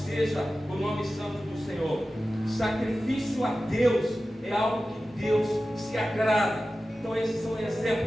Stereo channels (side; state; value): both; normal; correlation 0.94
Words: o nome santo do Senhor. Sacrifício a Deus é algo que Deus se agrada. Então esses são